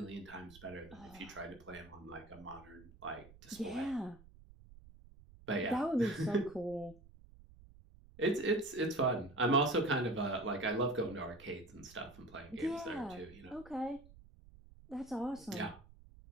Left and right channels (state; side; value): noise; right; rumble, 21 dB below the sound